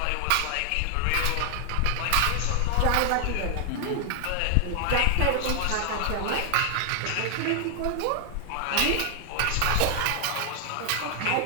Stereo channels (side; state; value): both; different; correlation 0.00